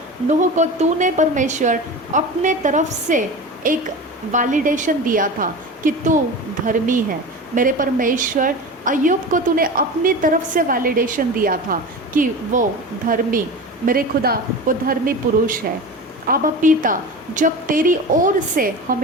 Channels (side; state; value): both; normal; correlation 0.30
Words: नूह को तूने परमेश्वर अपने तरफ से एक वैलिडेशन दिया था कि तू धर्मी है। मेरे परमेश्वर, अय्यूब को तूने अपनी तरफ से वैलिडेशन दिया था कि वो धर्मी, मेरे खुदा, वो धर्मी पुरुष है। आबा पिता, जब तेरी ओर से